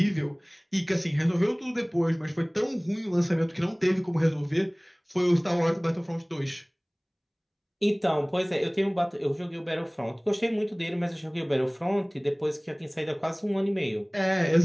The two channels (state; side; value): identical; both; correlation 1.00